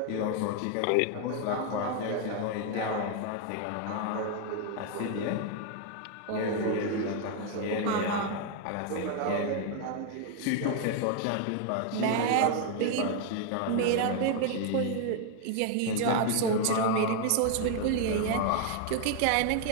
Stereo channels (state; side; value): different; both; correlation 0.00